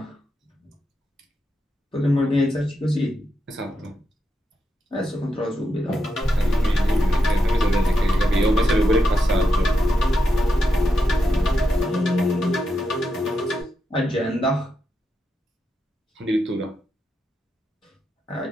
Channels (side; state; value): both; normal; correlation 0.85